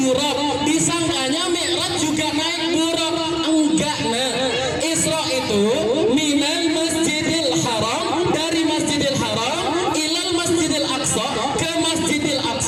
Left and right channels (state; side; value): identical; both; correlation 1.00